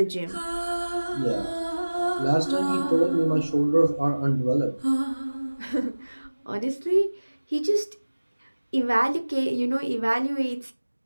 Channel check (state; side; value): inverted; both; correlation -1.00